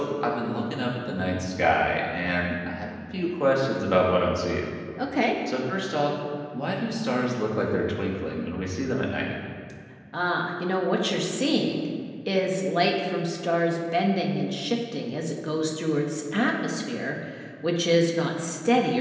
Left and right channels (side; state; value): both; identical; correlation 1.00